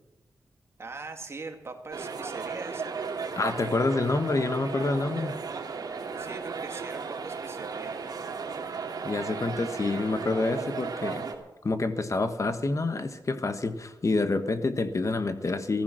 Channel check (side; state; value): both; normal; correlation 0.78